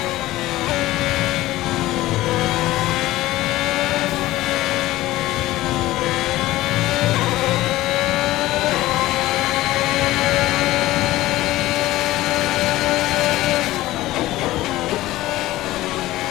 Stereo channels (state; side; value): quieter; right; 16.7 dB